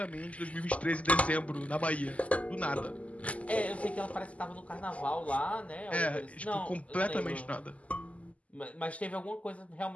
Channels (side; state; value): right; late; 0.068 ms